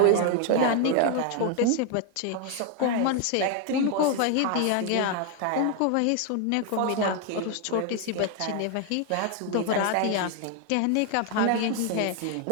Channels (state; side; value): different; both; correlation 0.00